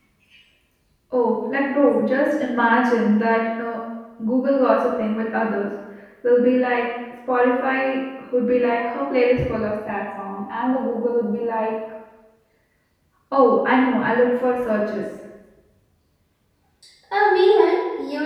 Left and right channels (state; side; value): identical; both; correlation 1.00